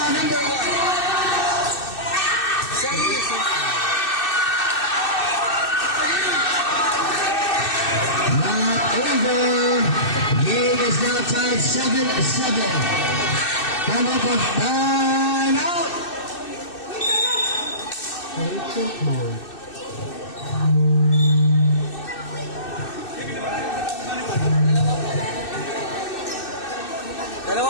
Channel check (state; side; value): late; right; 2.6 ms